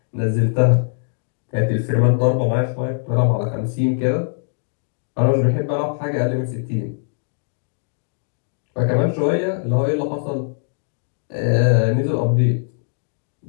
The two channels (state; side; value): silent; right; digital silence